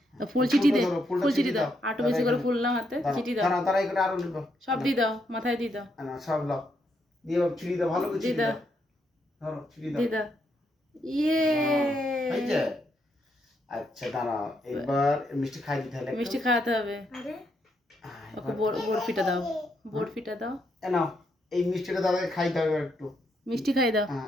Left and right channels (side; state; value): both; normal; correlation 0.78